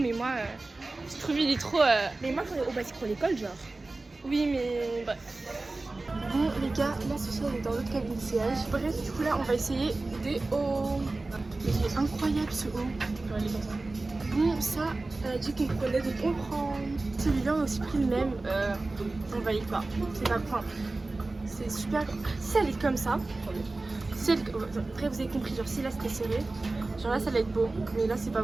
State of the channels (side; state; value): left; quieter; 3.2 dB